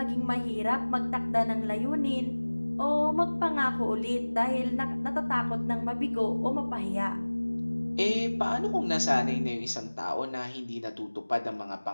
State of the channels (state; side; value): inverted; both; correlation -1.00